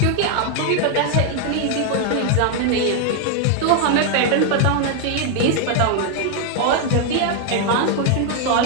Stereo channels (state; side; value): different; both; correlation 0.00